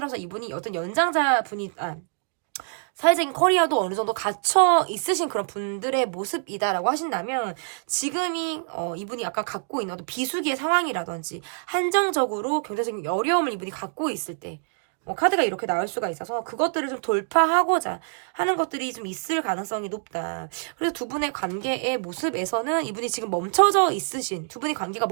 이분이 어떤 연장자 분이 사회적인 커리어도 어느 정도 갖춰 있으신 그런 분들의 모습이다라고 하신다면 지금이 이분이 아까 갖고 있는 어떤 비수기의 상황이라든지 한정적으로 경제적인 어려움을 이분이 갖고 있을 때 카드가 이렇게 나올 수가 있어서 그것들을 좀 돌파하고자 하는 것들이 좀 있을 가능성이 높다. 그래서 두 분의 관계의 모습에서는 이분이 지금 멈춰져 있으신, 두 분의 관계가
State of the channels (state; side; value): silent; left; 59 dB below the other